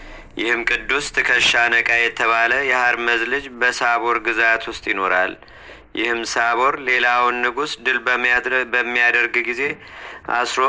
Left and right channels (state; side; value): identical; both; correlation 1.00